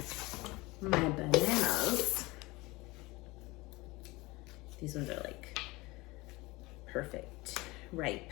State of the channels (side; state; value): right; quieter; 22.2 dB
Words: my bananas. These ones are like perfect, ripe.